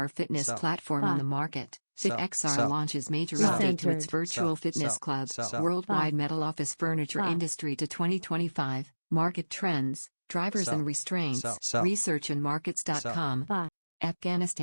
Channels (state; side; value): inverted; both; correlation -1.00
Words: fitness Sell. platform on the market. Sell. FitXR Sell. launches major Sell. update to its Centered. virtual Sell. fitness Sell. club. Sell. Worldwide Buy. metal office furniture Buy. industry to 2025. Market trends, drivers Sell. and restraints. Sell. Sell. Research and markets.com. Buy.